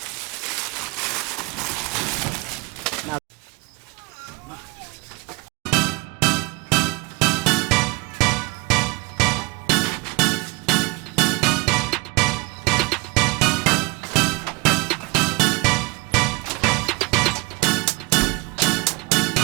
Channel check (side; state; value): left; quieter; 25.9 dB